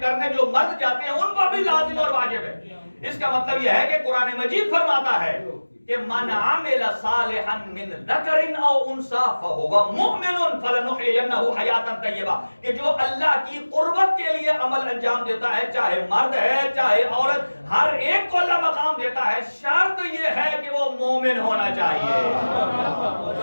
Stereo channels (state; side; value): inverted; both; correlation -1.00